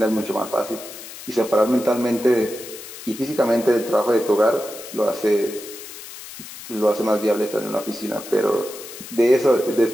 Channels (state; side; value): noise; left; hiss, 13 dB below the sound